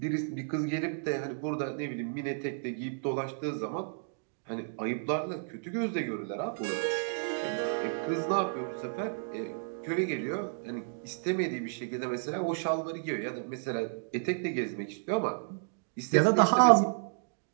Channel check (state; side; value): silent; left; digital silence